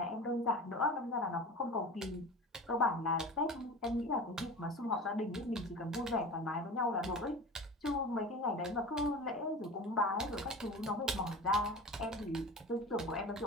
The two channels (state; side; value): normal; both; correlation 0.33